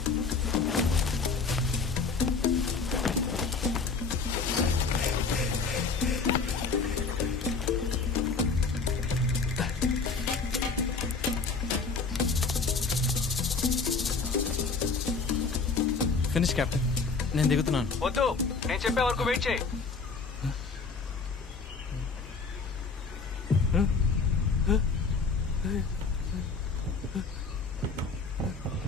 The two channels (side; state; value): right; quieter; 4.6 dB